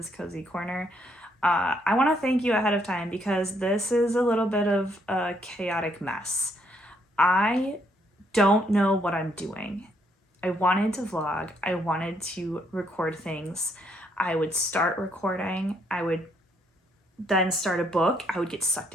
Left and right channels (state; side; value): normal; both; correlation 0.72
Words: Cozy Corner. I want to thank you ahead of time because this is a little bit of a chaotic mess. I don't know what I'm doing. I wanted to vlog. I wanted to record things. I would start recording. I would then start a book. I would get sucked